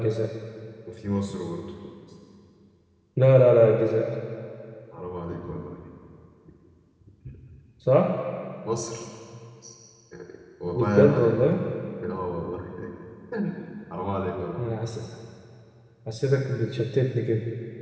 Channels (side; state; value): both; identical; correlation 1.00